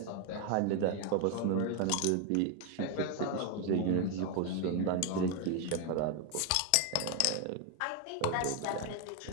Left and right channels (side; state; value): both; different; correlation 0.01